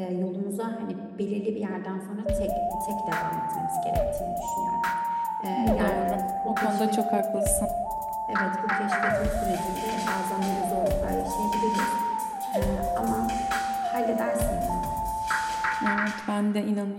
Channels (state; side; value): identical; both; correlation 1.00